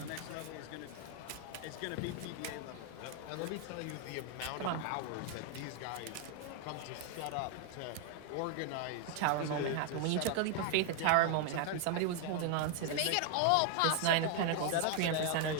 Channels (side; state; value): both; different; correlation 0.00